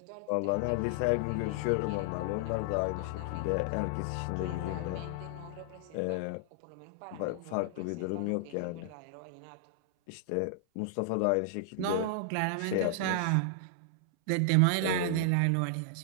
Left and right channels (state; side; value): different; both; correlation -0.01